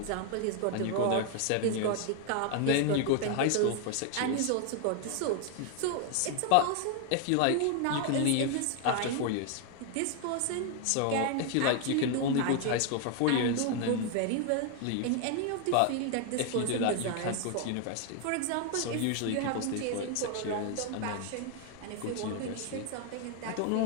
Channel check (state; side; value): different; both; correlation 0.00